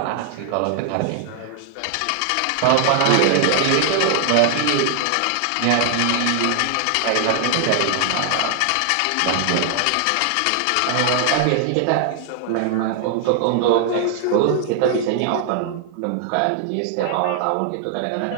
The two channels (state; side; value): different; both; correlation 0.00